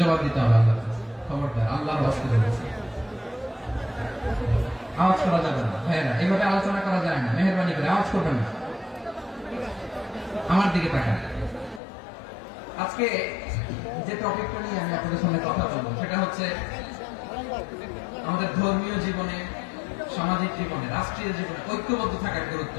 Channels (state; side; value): drops out; right; at 11.8 s